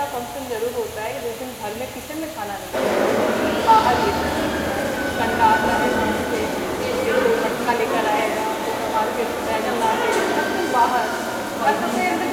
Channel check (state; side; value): identical; both; correlation 1.00